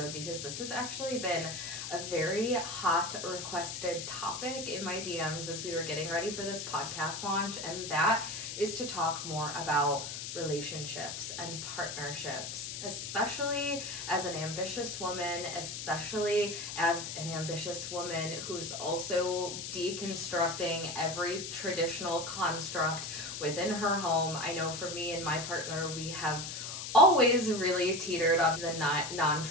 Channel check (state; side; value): noise; left; hiss, 6 dB below the sound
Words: because this has actually been a very hot requested topic in my DMs as we were getting ready for this podcast launch, and that is to talk more about relationships and partnerships, especially as an ambitious woman, who's also deconstructing every traditional construct within her home. I know for me and my partner, we have always really teetered on the